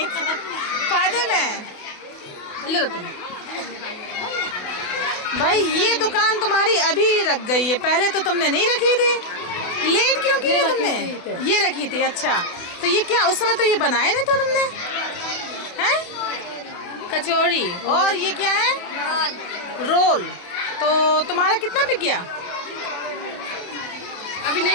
फायदे में लो तुम भाई, ये दुकान तुम्हारी अभी रख गई है, पहले तो तुमने नहीं रखी थी। लेट क्यों की है तुमने? ये रखी थी। अच्छा, तो ये क्या उस समय तो ये बनाए नहीं तो तुमने हैं? कचौरी। और ये क्या है? रोल। तो तुम्हारा कितना बिक गया? अभी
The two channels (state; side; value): late; right; 28 ms